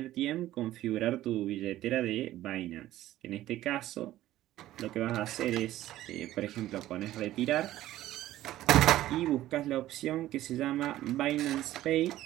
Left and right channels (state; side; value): quieter; left; 14.4 dB